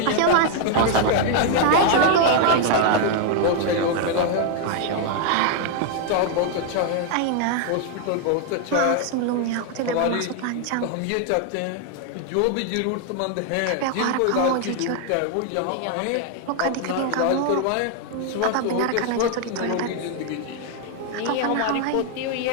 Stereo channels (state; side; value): different; both; correlation 0.00